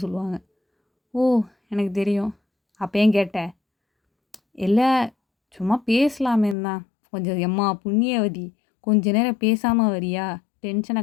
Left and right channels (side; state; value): right; drops out; at 6.6 s